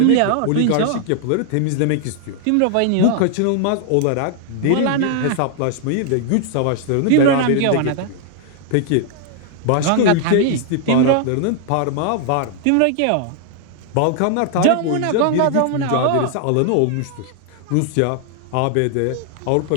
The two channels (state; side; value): different; both; correlation 0.00